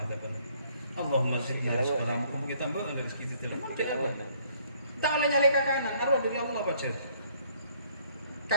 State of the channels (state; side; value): inverted; both; correlation -0.63